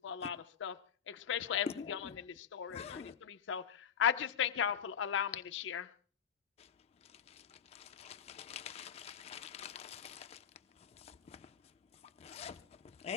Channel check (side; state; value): right; quieter; 8.1 dB